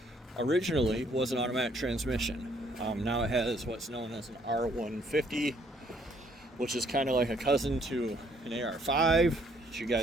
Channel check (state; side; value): normal; both; correlation 0.66